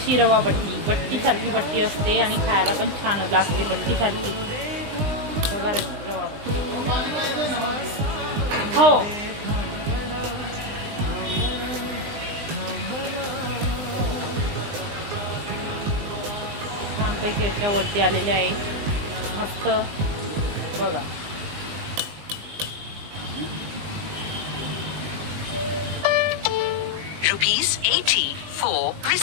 रवा बट्टीसारखी बट्टी असते आणि खायला पण छान लागते बट्टीसारखी. बघा रवा बट्टी. हो छानपैकी अशा वरती आलेल्या आहे मस्त. बघा ₹80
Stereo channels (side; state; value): left; late; 20 ms